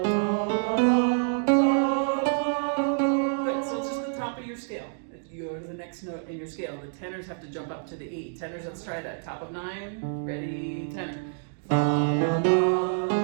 so it's just the top of your scale. If you go to the next note in your scale, the tenors have to jump up to the E. Tenors, let's try that. Top of 9, ready, tenor. Good.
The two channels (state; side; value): silent; left; digital silence